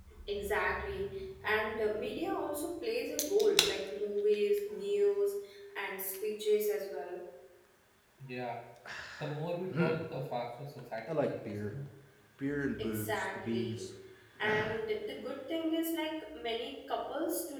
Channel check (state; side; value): identical; both; correlation 1.00